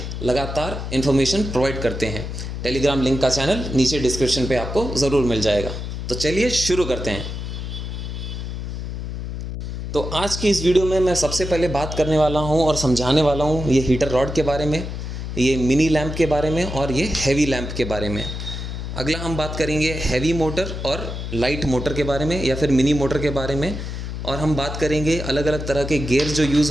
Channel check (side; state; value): left; noise; hum, 6 dB below the sound